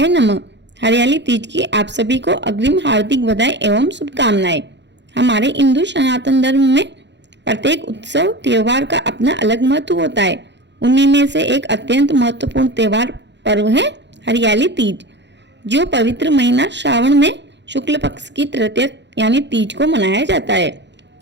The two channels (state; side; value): late; left; 0.52 ms